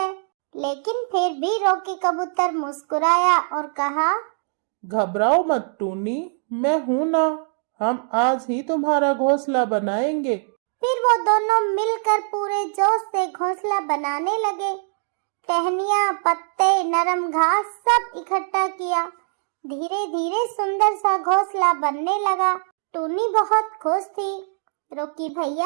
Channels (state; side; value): silent; left; digital silence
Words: लेकिन फिर भी रॉकी कबूतर मुस्कुराया और कहा, घबराओ मत टूनी, मैं हूं ना। हम आज ही तुम्हारा घोंसला बनाएंगे। फिर वो दोनों मिलकर पूरे जोश से घोंसला बनाने लगे। टहनियाँ, पत्ते, नरम घास सब इकट्ठा किया। धीरे धीरे सुंदर सा घोंसला बनने लगा। टूनी बहुत खुश थी। रॉकी